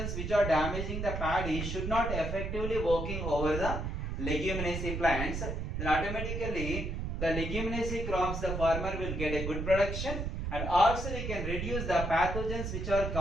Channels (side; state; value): right; noise; rumble, 3 dB below the sound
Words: which are damaging the paddy should not effectively working over the leguminaceae plants, then automatically the leguminaceae crops the farmer will get a good production, and also we can reduce the pathogens which are